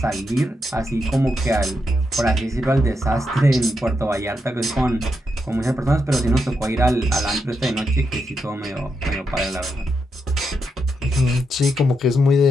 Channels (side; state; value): both; normal; correlation 0.83